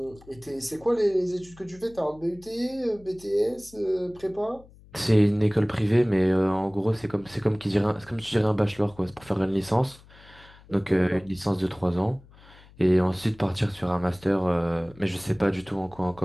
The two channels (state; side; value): noise; left; hum, 24 dB below the sound